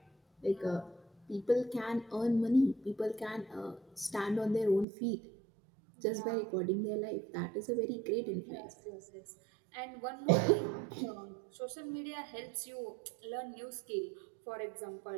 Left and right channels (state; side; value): drops out; left; at 4.9 s